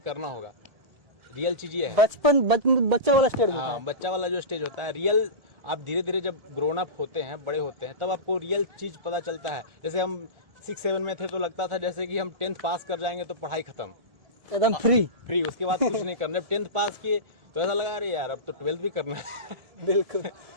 होगा। रियल चीज ये है, बच्चा वाला स्टेज होता है। बच्चा वाला जो स्टेज होता है, रियल आप धीरे धीरे जब ग्रोन अप होते हैं, बड़े होते हैं, तब आपको रियल चीज पता चलता है। जैसे हम 6-7 में थे तो लगता था जैसे कि हम 10th पास कर जाएंगे तो पढ़ाई खत्म, एकदम फ्री। उसके बाद कुछ नहीं करना। 10th पास किए तो ऐसा लगा अरे यार अब तो 12th भी करना है। बिल्कुल।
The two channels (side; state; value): left; late; 1.7 ms